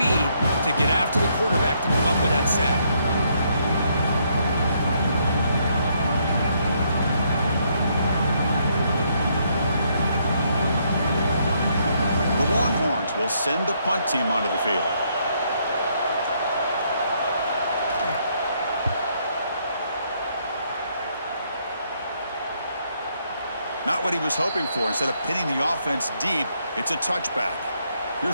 to get after the quarterback to come up with that sack. The Longhorns will send the punt team onto the field. Not what he was hoping for. Instead of pinning the offense deep, it's a touchback.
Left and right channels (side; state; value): both; inverted; correlation -0.72